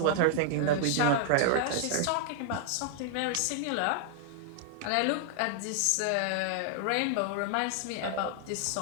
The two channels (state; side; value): different; both; correlation 0.00